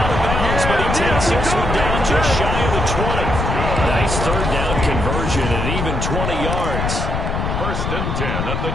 of bounds, but he takes this one down just shy of the 20. Nice 3rd down conversion and even 20 yards. 1st and 10 at the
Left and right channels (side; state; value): left; noise; rumble, 2 dB below the sound